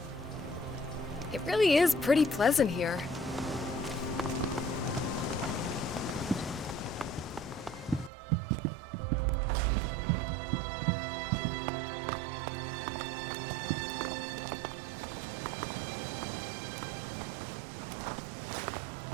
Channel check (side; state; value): left; drops out; at 8.1 s